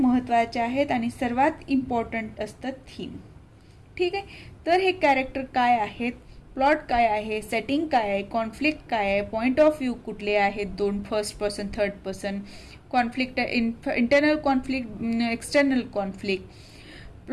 आहेत आणि सर्वात इम्पॉर्टंट असतं थीम. ठीक आहे. तर हे कॅरेक्टर काय आहेत, प्लॉट काय आहे, सेटिंग काय आहे, कॉन्फ्लिक्ट काय आहे, पॉइंट ऑफ व्ह्यू कुठले आहेत, दोन first person third person, conflict internal conflict, external conflict,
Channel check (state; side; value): identical; both; correlation 1.00